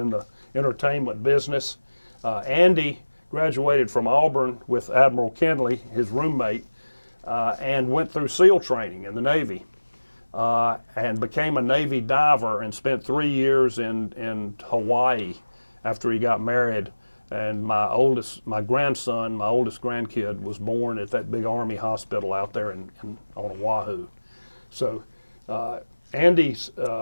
the entertainment business. Andy graduated from Auburn with Admiral Kenley, his roommate, and went through SEAL training in the Navy, and became a Navy diver and spent 3 years in Hawaii after he got married. And my oldest grandkid was born at that big Army hospital out there on Oahu. So Andy's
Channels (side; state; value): both; inverted; correlation -1.00